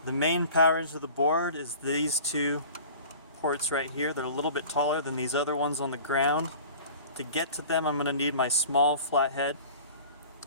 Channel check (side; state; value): both; inverted; correlation -0.43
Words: The main power into the board is these two ports right here. They're a little bit taller than these other ones on the ground. To get to them, I'm going to need my small flathead.